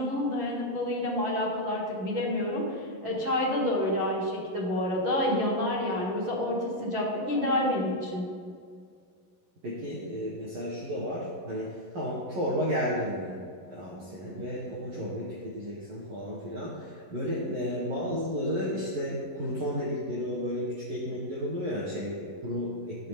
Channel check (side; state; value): left; late; 11 ms